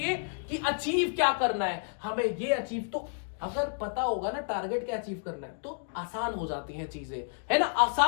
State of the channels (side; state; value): right; silent; digital silence